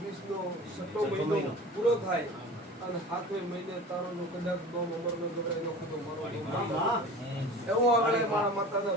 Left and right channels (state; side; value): normal; both; correlation 0.38